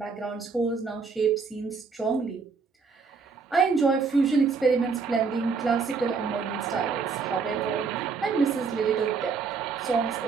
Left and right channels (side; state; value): left; quieter; 5.1 dB